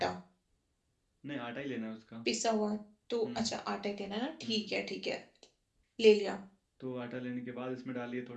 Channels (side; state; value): both; identical; correlation 1.00